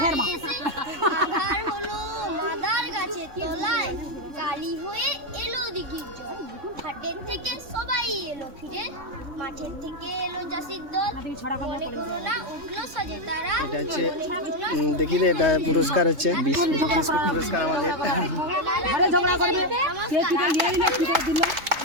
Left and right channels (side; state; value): left; late; 3.6 ms